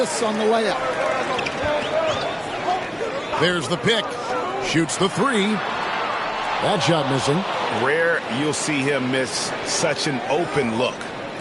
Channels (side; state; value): both; identical; correlation 1.00